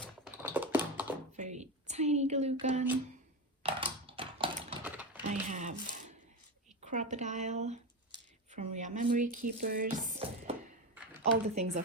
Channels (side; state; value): both; normal; correlation 0.17